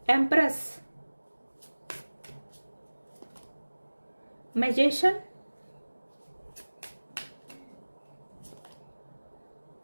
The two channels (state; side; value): inverted; both; correlation -1.00